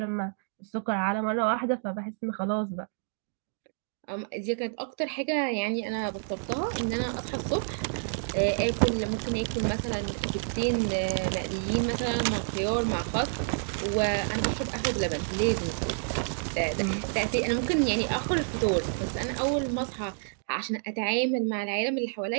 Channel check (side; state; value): left; silent; digital silence